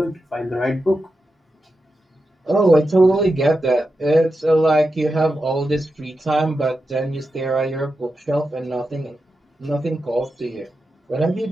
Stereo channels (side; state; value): both; normal; correlation 0.89